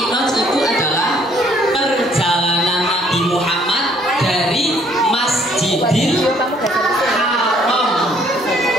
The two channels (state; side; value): normal; both; correlation 0.63